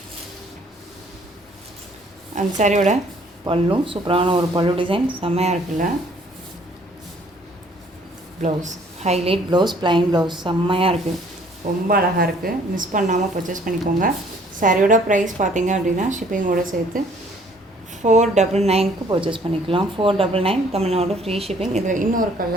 அந்த சாரியோட பல்லும் சூப்பரான ஒரு பல்லு டிசைன். செம்மையாக இருக்குல்ல. Blouse highlight blouse, plain blouse. செம்மையாக இருக்குது. ரொம்ப அழகாக இருக்குது. மிஸ் பண்ணாமல் பர்ச்சேஸ் பண்ணிக்கோங்க. சாரியோட ப்ரைஸ் பார்த்தீங்க அப்படின்னா ஷிப்பிங்கோடு சேர்த்து 499க்கு பர்ச்சேஸ் பண்ணிக்கலாம். 499 தமிழ்நாடு ஃப்ரீ ஷிப்பிங். இதில் இன்னொரு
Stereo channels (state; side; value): normal; both; correlation 0.60